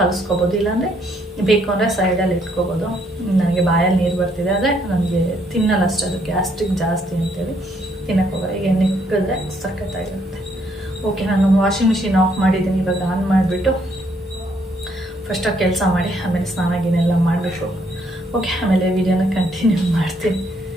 ಇಲ್ಲಾಂದರೆ ಬೇಕು ಅಂದರೆ ಸೈಡಲ್ಲಿ ಇಟ್ಕೊಬೋದು. ನನಗೆ ಬಾಯಲ್ಲಿ ನೀರು ಬರ್ತಿದೆ, ಆದರೆ ನನಗೆ ತಿನ್ನಲ್ಲ ಅಷ್ಟೇ, ಅದು ಗ್ಯಾಸ್ಟ್ರಿಕ್ ಜಾಸ್ತಿ ಅಂತೇಳಿ ತಿನ್ನಕ್ಕೆ ಹೋಗೋದು. ಈಗ ನಿಕ್ಕಿದ್ರೆ ಸಖತ್ತಾಗಿರುತ್ತೆ. ಓಕೆ, ನಾನು ವಾಷಿಂಗ್ ಮಿಷಿನ್ ಆಫ್ ಮಾಡಿದ್ದೀನಿ. ಇವಾಗ ಆನ್ ಮಾಡಿಬಿಟ್ಟು ಫಸ್ಟಾಗಿ ಕೆಲಸ ಮಾಡಿ ಆಮೇಲೆ ಸ್ನಾನ ಗಿನೆಲ್ಲ ಮಾಡಬೇಕು. ಓಕೆ, ಆಮೇಲೆ ವಿಡಿಯೋನ ಕಂಟಿನ್ಯೂ ಮಾಡ್ತೀನಿ.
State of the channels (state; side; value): normal; both; correlation 0.70